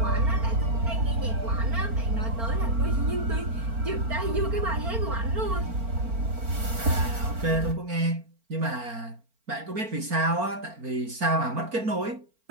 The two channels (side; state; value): left; late; 4.4 ms